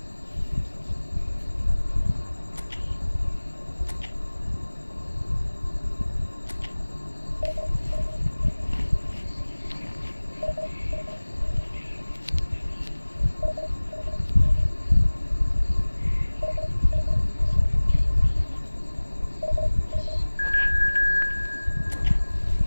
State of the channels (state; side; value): inverted; both; correlation -1.00